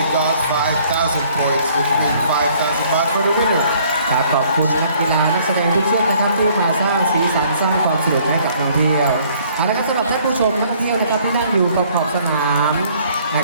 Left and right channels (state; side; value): inverted; both; correlation -0.60